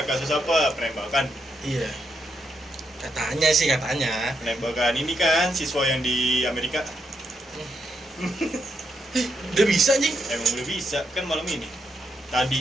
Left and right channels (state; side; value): normal; both; correlation 0.80